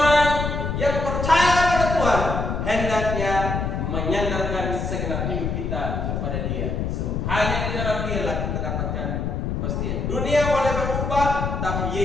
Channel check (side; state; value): left; noise; rumble, 2 dB below the sound